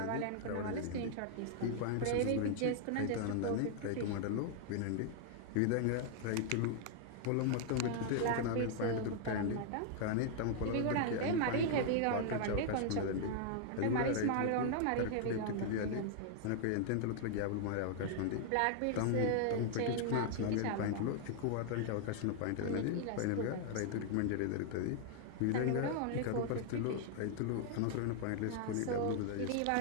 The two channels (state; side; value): different; both; correlation -0.01